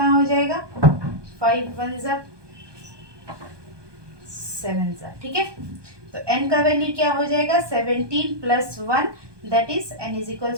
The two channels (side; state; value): left; late; 1.2 ms